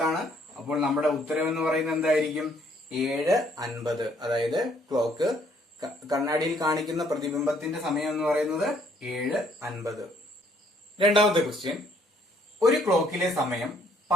ആണ്. അപ്പോൾ നമ്മുടെ ഉത്തരം എന്ന് പറയുന്നത് എന്തായിരിക്കും? 7:50. അതായത് ക്ലോക്ക് കണ്ണാടിയിൽ കാണിക്കുന്ന പ്രതിബിംബത്തിന്റെ സമയം എന്ന് പറയുന്നത് 7:50. രണ്ടാമത്തെ ക്വസ്റ്റ്യൻ, ഒരു ക്ലോക്കിലെ സമയം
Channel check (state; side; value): normal; both; correlation 0.65